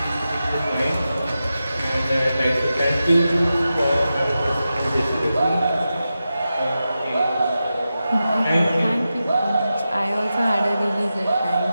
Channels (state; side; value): inverted; both; correlation -0.91